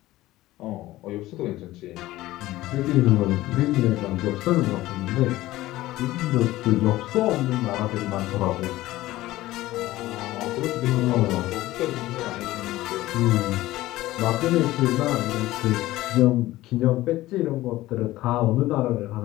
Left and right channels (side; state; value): right; quieter; 16.8 dB